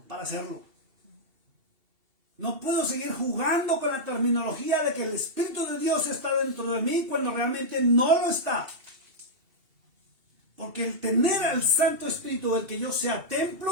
para hacerlo. No puedo seguir jugando con la terminología de que el Espíritu de Dios está dentro de mí cuando realmente no lo está. Porque el tener al Santo Espíritu, el que yo sea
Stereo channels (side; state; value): left; late; 2.7 ms